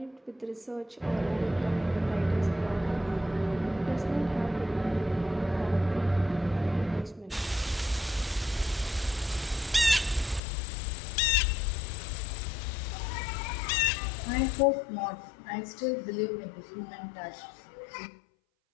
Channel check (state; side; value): drops out; right; at 10.4 s